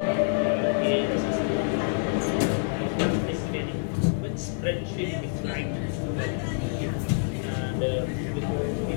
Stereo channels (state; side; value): silent; right; 60 dB below the other